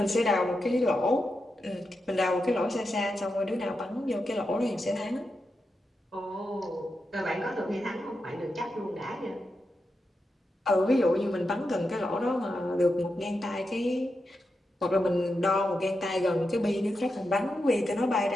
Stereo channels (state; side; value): normal; both; correlation 0.88